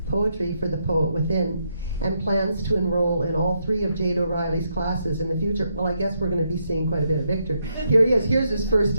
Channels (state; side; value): inverted; both; correlation -0.79